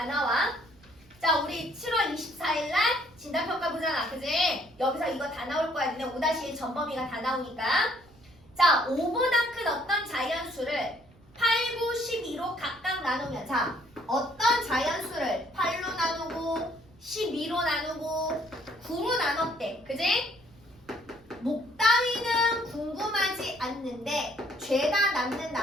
나와. 자, 우리 7월 24일 날 진단평가 보잖아. 그지? 여기서 이거 다 나올 거야. 근데 5-1 전범위가 다 나오니까. 자, 5보다 큰 어떤 자연수를 8, 9, 12로 각각 나누면, 자, 어떤 자연수를 8로 나누고 12로 나누고 9로 나눴대. 그지? 목다위는 궁금하지 않는데 죄다 남는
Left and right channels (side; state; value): right; noise; rumble, 27 dB below the sound